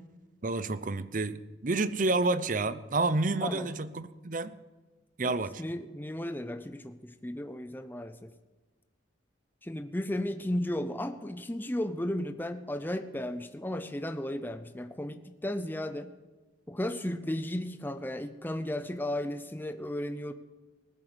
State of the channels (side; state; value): both; normal; correlation 0.53